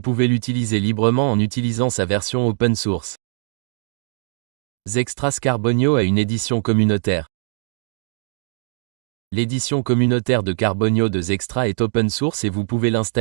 pouvez l'utiliser librement en utilisant sa version open source. Zextras Carbonio a une édition communautaire. L'édition communautaire de Carbonio de Zextras est open source et vous pouvez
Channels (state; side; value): silent; left; digital silence